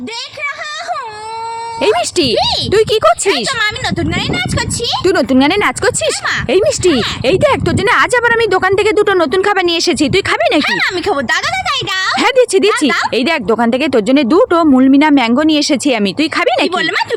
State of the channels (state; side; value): identical; both; correlation 1.00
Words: देख रहा हूँ। এই মিষ্টি, তুই কি করছিস? আমি নতুন গানে নাচ করছি। তুই নতুন গানে নাচ করছিস? এই মিষ্টি, এই দেখ তোর জন্য আজ আবার আমি দোকান থেকে দুটো নতুন খাবার নিয়ে এসেছি, তুই খাবি নাকি? আমি খাবো। দাদা দাদাই দাও। হ্যাঁ দিচ্ছি। এই দেখ দোকান থেকে তোর জন্য দুটো মুলমিনা ম্যাঙ্গো নিয়ে এসেছি আমি, তুই খাবি নাকি? বললে মা